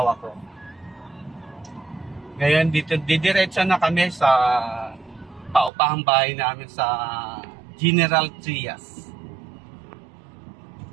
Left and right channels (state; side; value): drops out; left; at 5.7 s